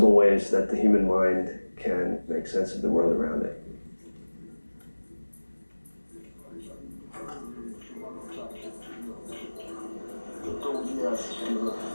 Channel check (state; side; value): inverted; both; correlation -1.00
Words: ways that the human mind can make sense of the world around it.